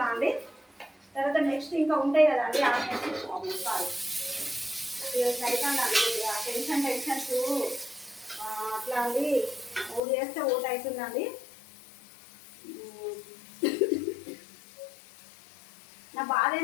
అండి. తర్వాత నెక్స్ట్ ఇంకా ఉంటాయి కదండి ఆనియన్స్. టెన్షన్స్ అట్లా అండి, ఓడి చేస్తే ఓటు అవుతుందండి. నా బాధ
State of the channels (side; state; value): right; drops out; at 10.0 s